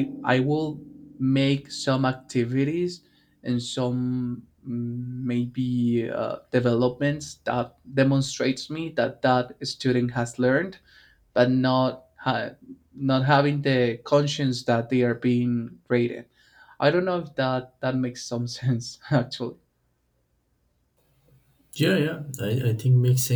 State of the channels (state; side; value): identical; both; correlation 1.00